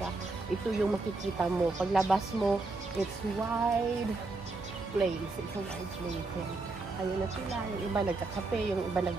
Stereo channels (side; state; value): left; quieter; 3.4 dB